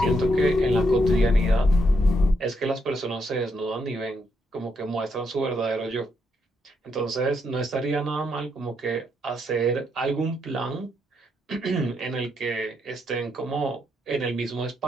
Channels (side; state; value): both; normal; correlation 0.78